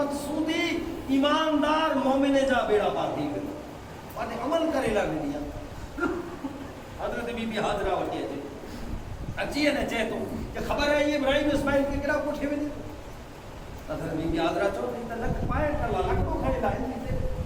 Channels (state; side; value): identical; both; correlation 1.00